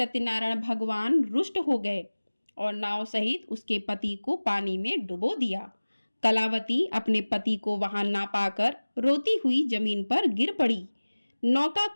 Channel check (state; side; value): inverted; both; correlation -1.00